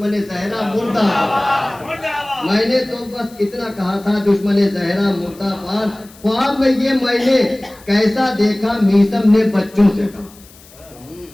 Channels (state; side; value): noise; left; hiss, 24 dB below the sound